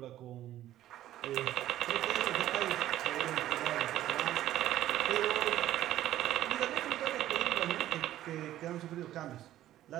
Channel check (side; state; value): left; quieter; 13.4 dB